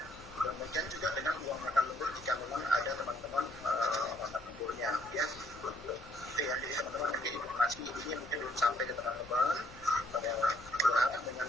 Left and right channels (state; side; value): normal; both; correlation 0.66